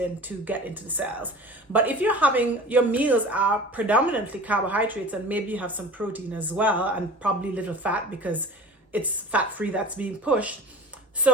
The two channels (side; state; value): both; normal; correlation 0.39